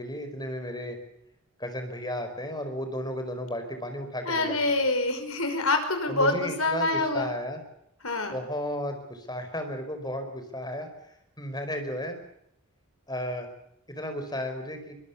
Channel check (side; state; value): both; normal; correlation -0.07